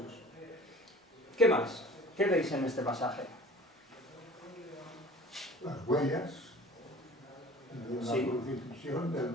¿Qué más? ¿Qué veis en este pasaje? Las huellas de la Sí. crucifixión,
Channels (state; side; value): normal; both; correlation 0.45